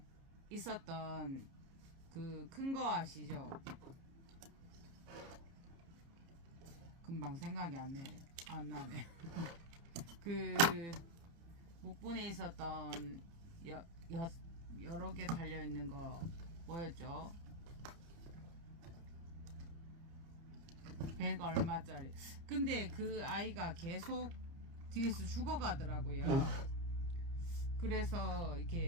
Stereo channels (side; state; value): left; late; 30 ms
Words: 있었던 그 큰 거 아시죠? 금방 생각이 안 나네. 그 묵분에 있었던 여러 개 달려있는 거 뭐였죠? 100 얼마짜리. 근데 그 아이가 계속 뒤에서 죽어가더라고요. 그래서